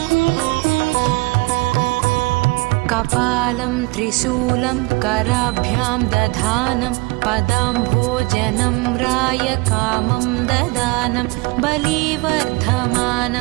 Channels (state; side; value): quieter; left; 25.2 dB